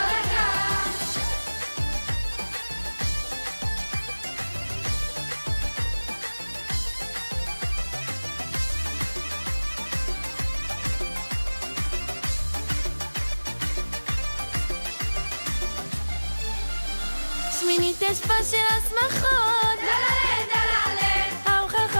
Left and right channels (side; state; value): both; inverted; correlation -1.00